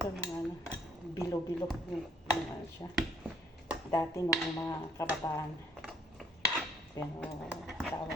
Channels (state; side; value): normal; both; correlation 0.63